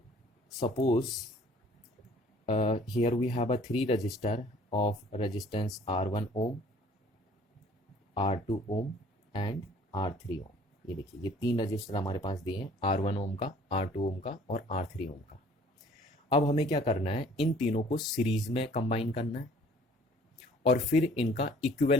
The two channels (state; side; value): normal; both; correlation 0.55